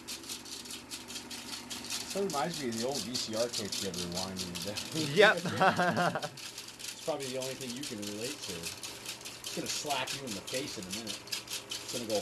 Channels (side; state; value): both; identical; correlation 1.00